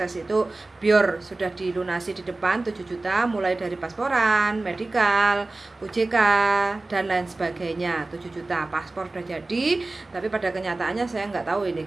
itu biar sudah dilunasi di depan 7 juta mulai dari pasporan, medikal, UJK dan lain sebagainya. 7 juta paspor sudah jadi, tapi pada kenyataannya saya nggak tahu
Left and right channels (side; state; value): left; quieter; 3.1 dB